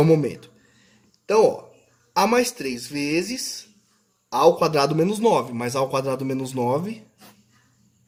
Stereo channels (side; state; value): both; identical; correlation 1.00